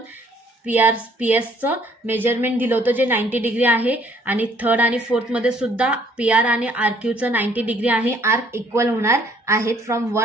PSचं मेजरमेंट दिलं होतं जे 90 डिग्री आहे. आणि थर्ड आणि फोर्थमध्ये सुद्धा PR आणि RQचं 90 डिग्री आहे. आर्क इक्वल होणार आहेत फ्रॉम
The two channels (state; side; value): normal; both; correlation 0.62